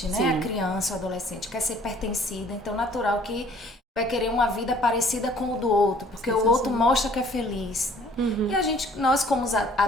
né? Sim. A criança, o adolescente. Quer ser pertencida. Então, natural que vai querer uma vida parecida com o do outro. Porque o outro mostra que é feliz. E nós como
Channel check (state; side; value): normal; both; correlation 0.56